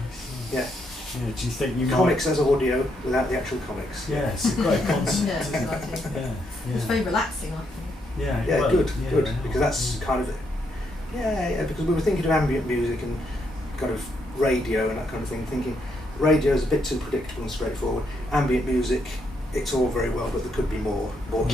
Yeah. Yeah, do you think you comics as audio without the actual comics? Yeah, it's a great concept. Yeah, exciting. Yeah. It's very relaxing, I think. Yeah, well, good, yeah, because that's kind of because we were thinking of ambient music and kind of radio and that kind of thing, thinking radio is a bit too predictable and straightforward. Ambient music, it's all very well, but there could be more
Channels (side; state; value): both; normal; correlation 0.77